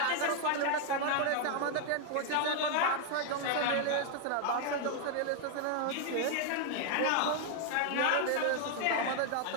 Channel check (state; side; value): different; both; correlation 0.00